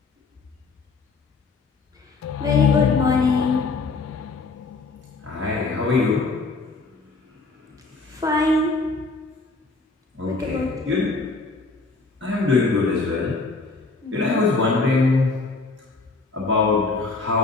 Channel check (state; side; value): quieter; right; 3.9 dB